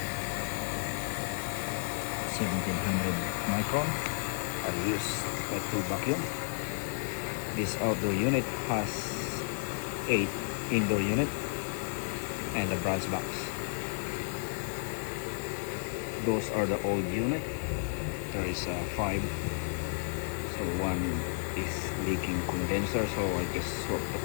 1700 micron. I use my tool vacuum. This outdoor unit has 8 indoor unit and a brass box. Those are the old unit. There is 5. So one is leaking condenser, so I just swap the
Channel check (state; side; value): silent; right; 56 dB below the other